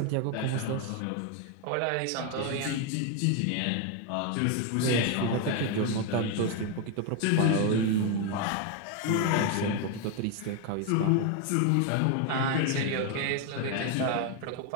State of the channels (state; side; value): different; both; correlation 0.02